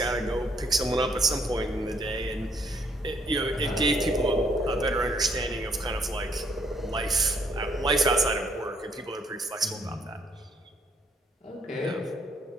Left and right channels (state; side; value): normal; both; correlation 0.68